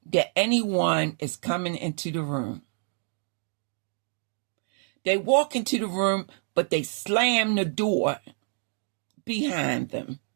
that anyone is coming into the room. They walk into the room, but they slam the door behind them.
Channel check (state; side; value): silent; left; 60 dB below the other